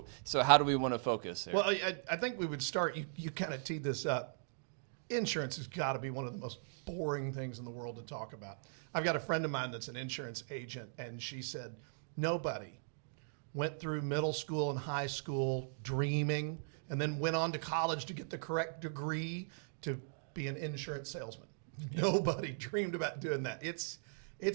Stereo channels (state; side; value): silent; left; digital silence